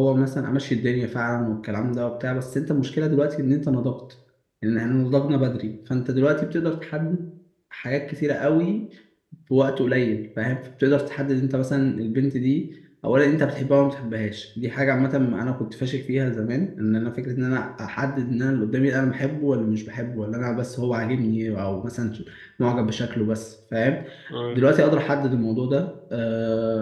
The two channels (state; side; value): identical; both; correlation 1.00